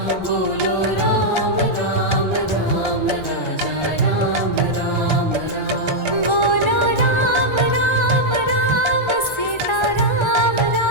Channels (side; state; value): right; late; 1.3 ms